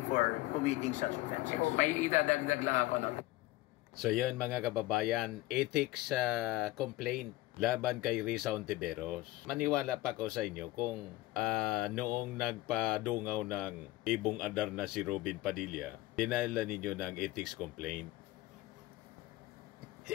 committing such offenses. May idadagdag lang ako, no? So yun mga kababayan, ethics complaint laban kay Risa Hontiveros. Maniwala pa ko sa inyo kung noong nagpadungaw ng ibong adar na si Robin Padilla, dinala ninyo ng ethics complaint.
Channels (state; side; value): quieter; right; 18.0 dB